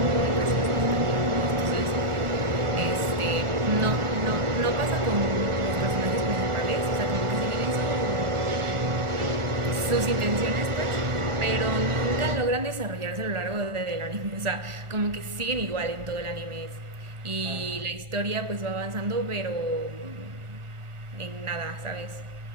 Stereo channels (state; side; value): late; left; 1.4 ms